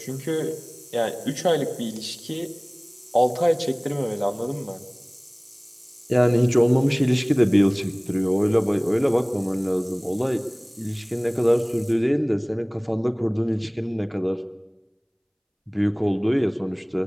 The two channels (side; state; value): both; identical; correlation 1.00